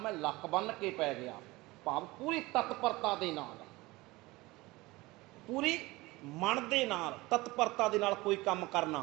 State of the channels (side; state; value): left; quieter; 21.1 dB